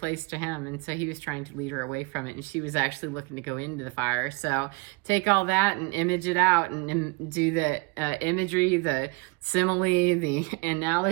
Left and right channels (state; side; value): quieter; left; 27.7 dB